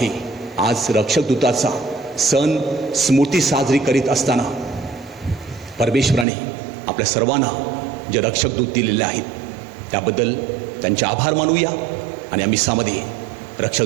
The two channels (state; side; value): drops out; left; at 6.2 s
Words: आज रक्षकदूताचा सण स्मृती साजरी करीत असताना परमेश्वराने आपल्या सर्वांना जे रक्षकदूत दिलेले आहेत त्याबद्दल त्यांचे आभार मानूया आणि आम्ही सामध्ये